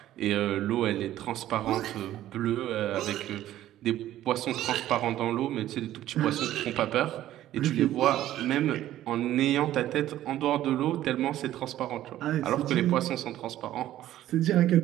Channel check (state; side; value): quieter; left; 13.3 dB